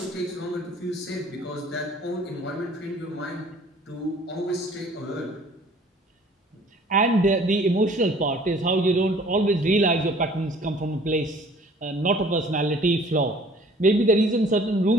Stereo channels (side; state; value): both; normal; correlation 0.53